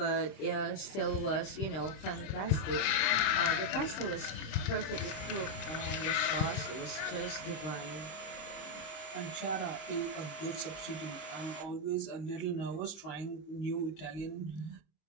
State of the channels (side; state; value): right; late; 26 ms